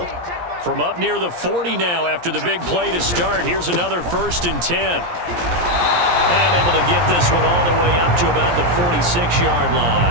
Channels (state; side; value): late; left; 17 ms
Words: From up near the 40 now after the big play to start, here's another 1st and 10. And able to get this one all the way up to about the 46-yard